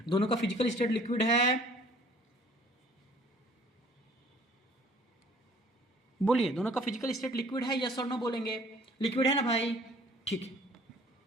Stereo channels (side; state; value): both; normal; correlation 0.54